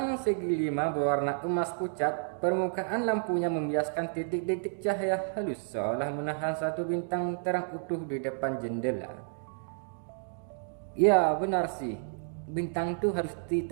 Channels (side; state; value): left; silent; digital silence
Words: segi 5 berwarna emas pucat. Permukaan lampunya membiaskan titik-titik cahaya halus seolah menahan satu bintang terang utuh di depan jendela. Ya benar sih. Bintang tuh harus